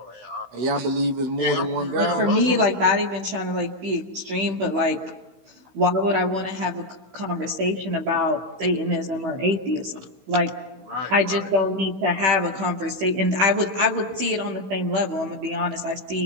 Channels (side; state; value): left; late; 16 ms